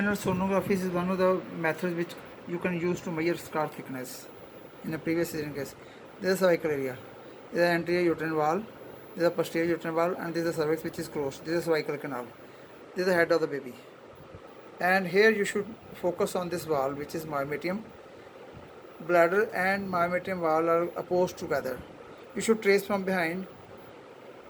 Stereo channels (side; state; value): both; identical; correlation 1.00